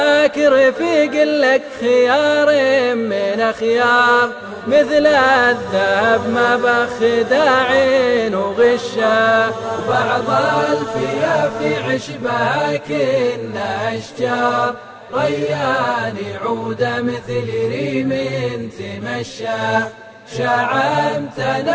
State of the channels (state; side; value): identical; both; correlation 1.00